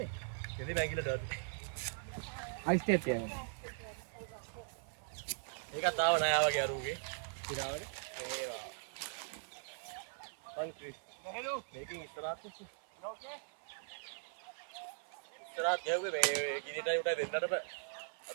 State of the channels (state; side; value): silent; left; 51 dB below the other